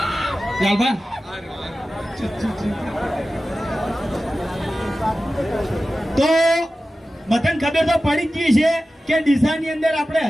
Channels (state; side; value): normal; both; correlation 0.95